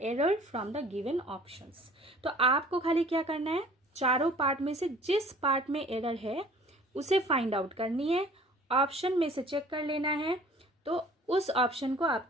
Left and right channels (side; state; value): both; normal; correlation 0.51